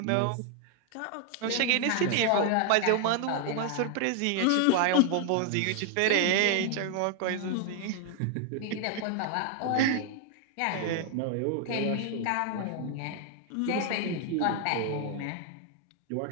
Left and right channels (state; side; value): different; both; correlation 0.00